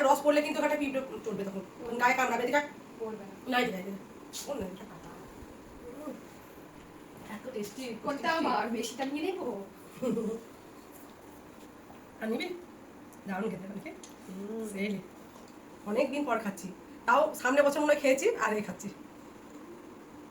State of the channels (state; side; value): identical; both; correlation 1.00